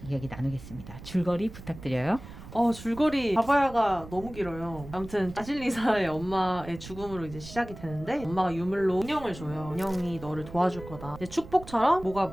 이야기 나누겠습니다. 줄거리 부탁드려요. 줄거리 바바야가 너무 길어요. 아무튼 바실리사의 엄마의 죽음으로 이제 시작이 되는데 엄마가 유물로 인형을 줘요. 인형이 너를 도와줄 거다. 이제 축복처럼 뭐가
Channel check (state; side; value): noise; right; rumble, 15 dB below the sound